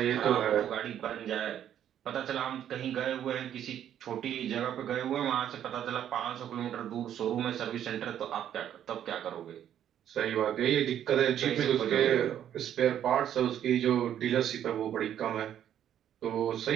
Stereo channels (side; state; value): left; quieter; 10.3 dB